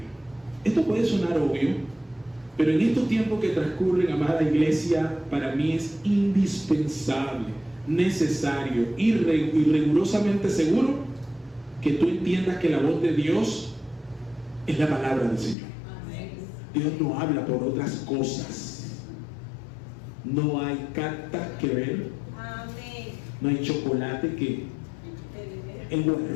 Esto puede sonar obvio, pero en estos tiempos que transcurren, amada iglesia, para mí es indispensable, necesario y rigurosamente seguro que tú entiendas que la voz de Dios es la palabra del Señor. Amén. Dios no habla por otras cosas. No hay cartas que ver. Amén. No hay chocolate que... El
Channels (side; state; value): right; drops out; at 15.6 s